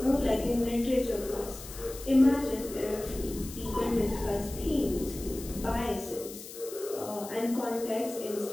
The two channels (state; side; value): noise; left; hiss, 13 dB below the sound